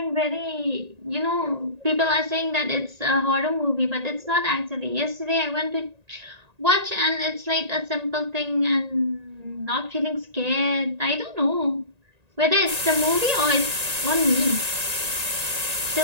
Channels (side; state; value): left; late; 1.9 ms